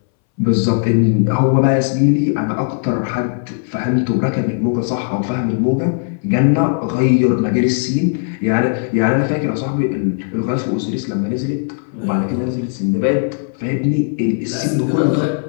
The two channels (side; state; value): right; silent; 64 dB below the other